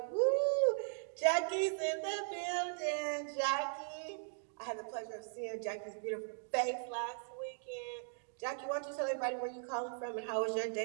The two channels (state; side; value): silent; left; digital silence